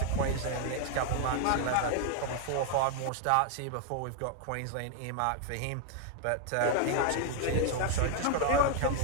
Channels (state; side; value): different; both; correlation 0.00